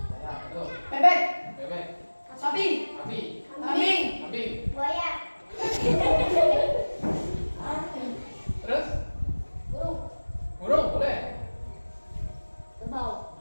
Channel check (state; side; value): inverted; both; correlation -1.00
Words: Ya, betul. Bebek. Bebek, Sapi. sapi, Kambing. kambing. buaya, Terus? burung, Burung boleh. kerbau,